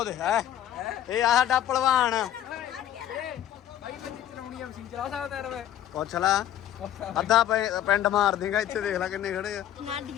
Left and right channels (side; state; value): right; quieter; 11.4 dB